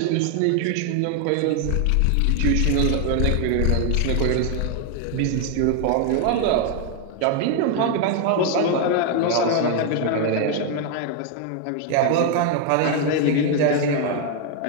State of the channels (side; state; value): both; different; correlation 0.00